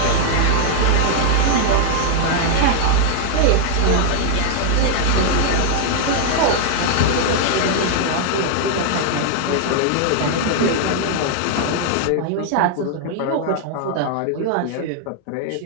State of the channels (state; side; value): different; both; correlation -0.01